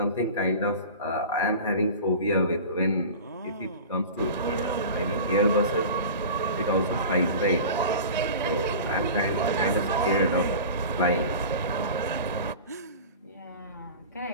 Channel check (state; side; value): inverted; both; correlation -0.34